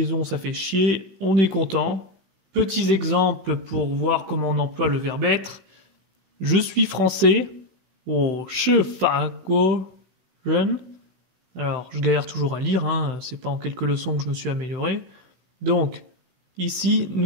ça fait chier, on est content. Petits exemples pour voir comment on emploie le verbe être. Je suis français, je fa guo ren. Alors je galère toujours à lire, hein. C'est pas en quelques leçons que je me suis amélioré. Donc, ici,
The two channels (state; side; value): late; left; 16 ms